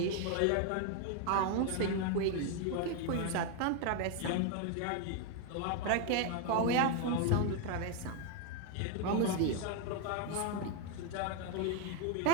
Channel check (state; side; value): different; both; correlation 0.02